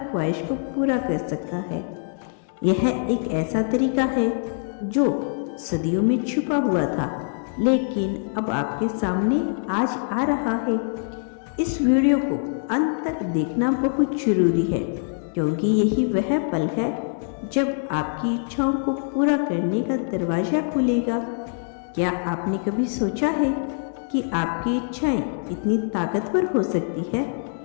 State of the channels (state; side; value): silent; right; digital silence